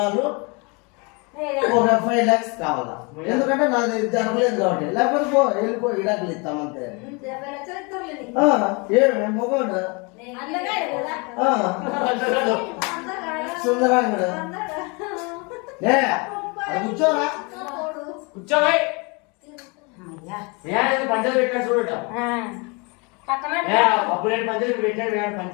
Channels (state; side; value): quieter; right; 30.4 dB